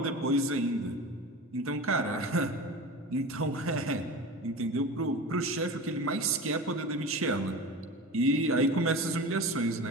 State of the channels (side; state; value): both; normal; correlation 0.31